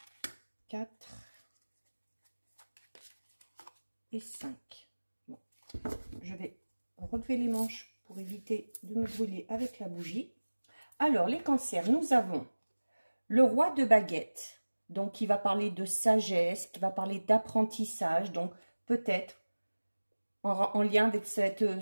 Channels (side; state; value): both; inverted; correlation -1.00